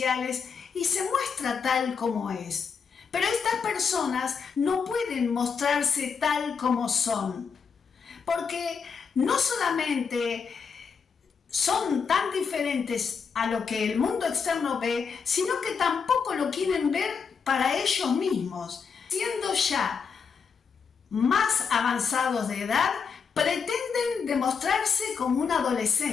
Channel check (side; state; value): right; quieter; 6.0 dB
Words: y se muestra tal como es. Pero estas personas no pueden mostrarse tal como son, porque no solamente son tan diferentes a lo que el mundo externo ve, sino que tampoco lo quieren ver para ellos mismos. Siendo ya más avanzados de edad, pretenden demostrarse como un